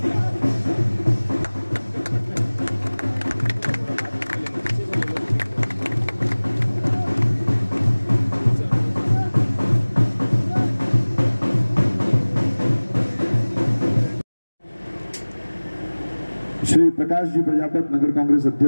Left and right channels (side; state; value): both; inverted; correlation -1.00